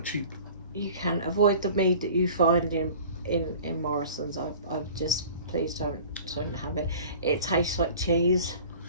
cheap. You can avoid the mead that you find in Morrison's. I've just, please don't have it. It tastes like cheese.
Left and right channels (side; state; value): both; inverted; correlation -0.43